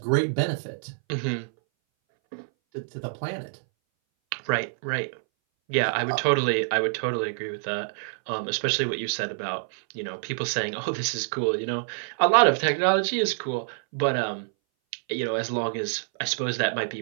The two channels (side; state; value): left; silent; 60 dB below the other